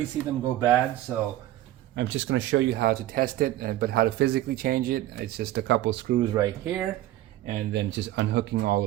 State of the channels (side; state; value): left; quieter; 14.7 dB